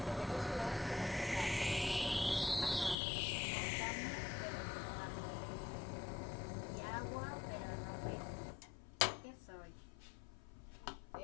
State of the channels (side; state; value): right; drops out; at 3.0 s